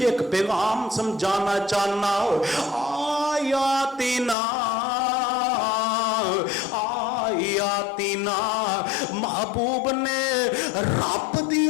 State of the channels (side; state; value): right; drops out; at 4.4 s